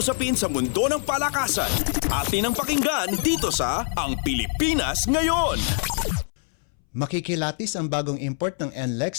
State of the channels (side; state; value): right; silent; 62 dB below the other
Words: sa mundo ng palakasan. Atin ang pakinggan dito sa Ang Pilipinas Ngayon. Makikilatis ang bagong import ng